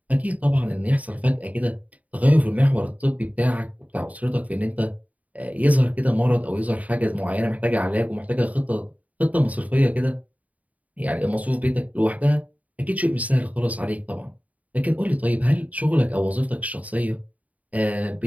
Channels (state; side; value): late; left; 0.071 ms